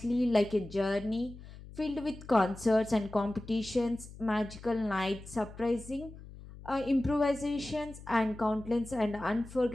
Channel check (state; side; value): noise; left; hum, 16 dB below the sound